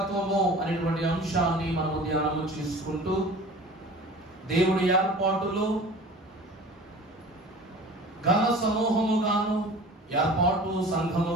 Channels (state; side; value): normal; both; correlation 0.41